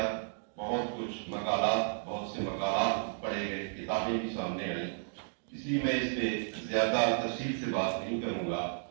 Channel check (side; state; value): left; silent; digital silence